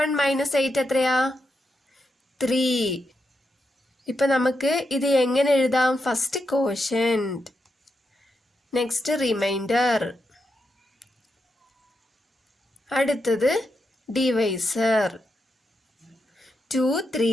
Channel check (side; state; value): both; normal; correlation 0.85